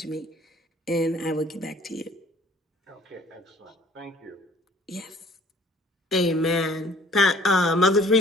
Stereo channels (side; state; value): both; normal; correlation 0.55